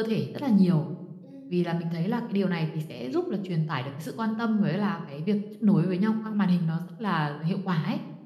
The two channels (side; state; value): both; identical; correlation 1.00